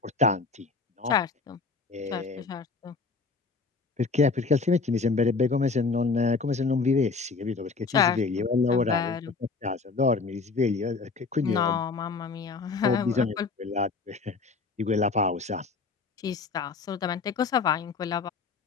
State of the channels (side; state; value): right; quieter; 4.4 dB